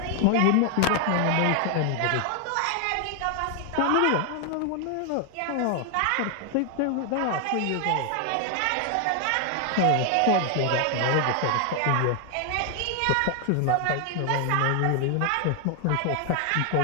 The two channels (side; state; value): both; different; correlation 0.00